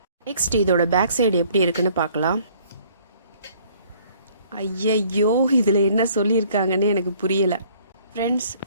நெக்ஸ்ட் இதோட பேக் சைடு எப்படி இருக்குன்னு பார்க்கலாம். ஐயையோ, இதில் என்ன சொல்லியிருக்காங்கன்னு எனக்கு புரியலை. ஃப்ரெண்ட்ஸ்,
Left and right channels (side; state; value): both; inverted; correlation -0.59